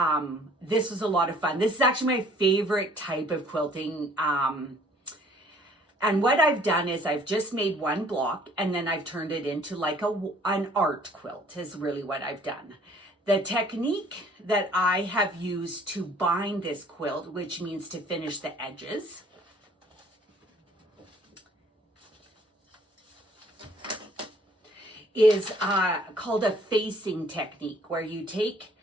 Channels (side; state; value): both; normal; correlation 0.57